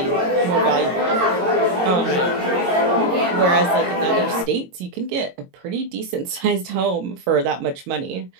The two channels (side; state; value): left; late; 22 ms